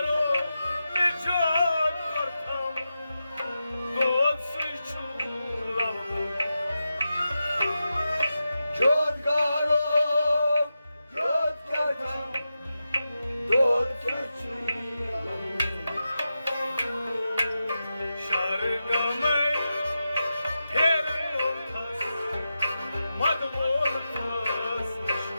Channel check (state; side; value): inverted; both; correlation -0.90